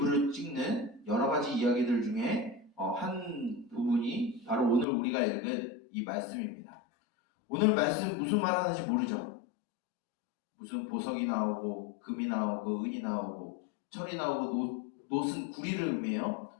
찍는 여러 가지 이야기들 중에 한 부분이 바로 오늘 우리가 읽은 이 말씀입니다. 오늘 말씀 무슨 말 하는지 모르죠? 무슨 보석이 나오고 금이 나오고 은이 나오고 철이 나오고 노슨 구리를 의미해요.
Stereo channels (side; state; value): right; drops out; at 4.9 s